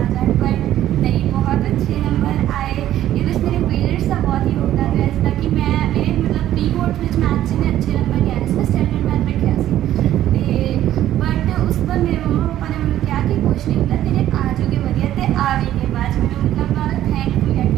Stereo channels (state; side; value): quieter; left; 12.6 dB